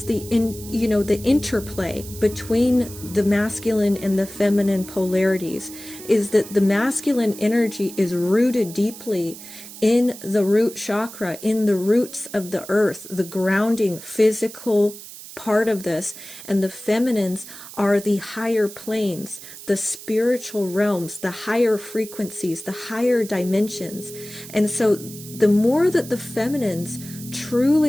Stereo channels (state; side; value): noise; right; hiss, 15 dB below the sound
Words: the interplay between the masculine and the feminine polarities, is that the masculine energy is rooted deeply in the root chakra, in the roots of the earth, the grounding physical part of this, and the feminines are the higher planes, the spiritual realms, the higher frequencies, the higher dimensions. And so the more that the feminines